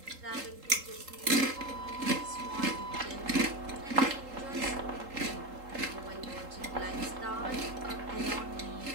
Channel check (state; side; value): late; left; 3.8 ms